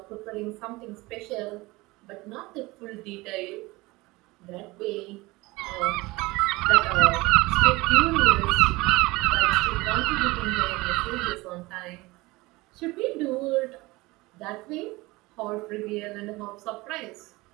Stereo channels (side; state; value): left; quieter; 21.7 dB